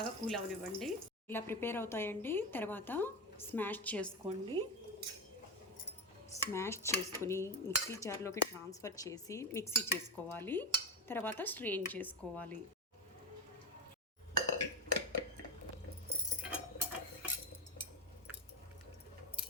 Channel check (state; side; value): normal; both; correlation 0.17